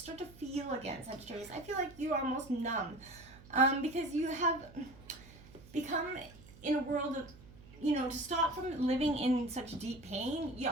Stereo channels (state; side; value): noise; right; hum, 20 dB below the sound